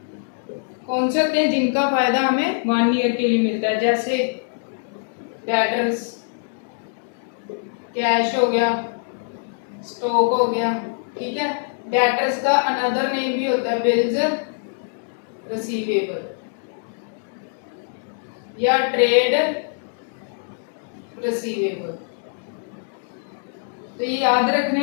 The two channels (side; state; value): right; silent; digital silence